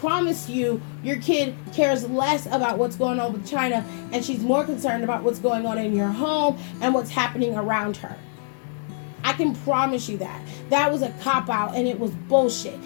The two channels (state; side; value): silent; right; digital silence